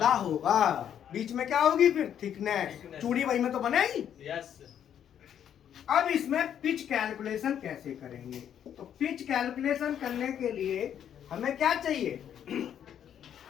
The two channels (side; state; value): right; quieter; 9.4 dB